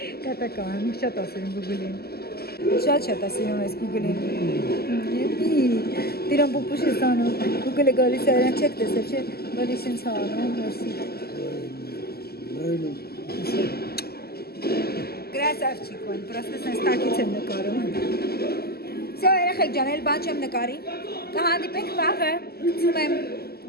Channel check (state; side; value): late; right; 0.46 ms